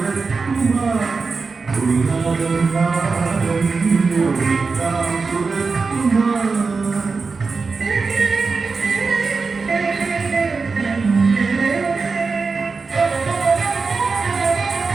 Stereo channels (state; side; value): quieter; left; 4.5 dB